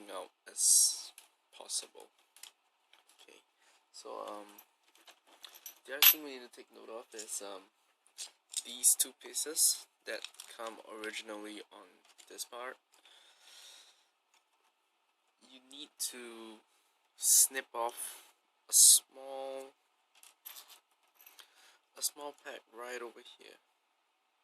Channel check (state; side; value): identical; both; correlation 1.00